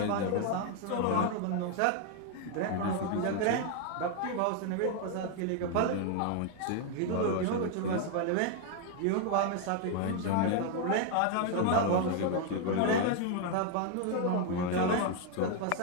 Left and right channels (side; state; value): both; different; correlation 0.01